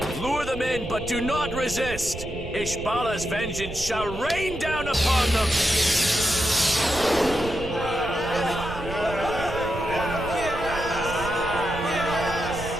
Lure them in, but do not resist! Ishbala's vengeance shall rain down upon them!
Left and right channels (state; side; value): noise; right; rumble, 11 dB below the sound